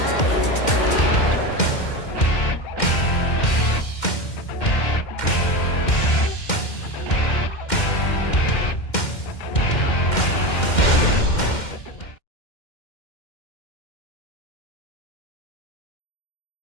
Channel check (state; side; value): late; right; 2.1 ms